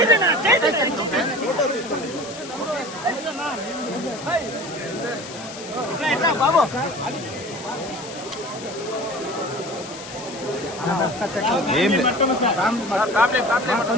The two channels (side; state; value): left; noise; hiss, 13 dB below the sound